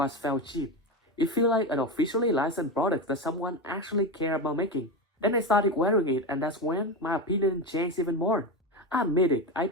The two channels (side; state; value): both; normal; correlation 0.17